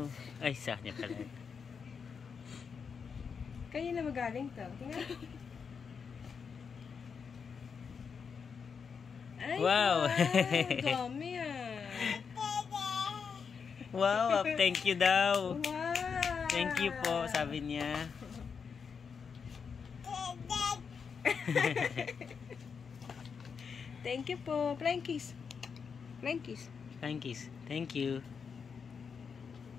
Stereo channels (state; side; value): quieter; right; 6.1 dB